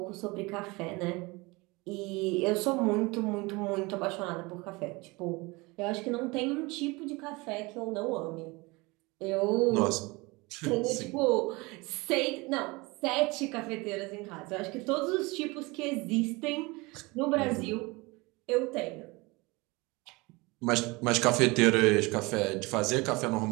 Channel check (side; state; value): left; quieter; 24.6 dB